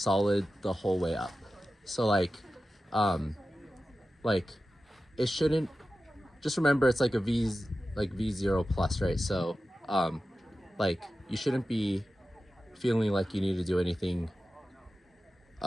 the whole way up. So like it shouldn't, just remember it's like a V0 plus, right? So like you shouldn't be feeling like you need to do anything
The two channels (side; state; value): both; normal; correlation 0.94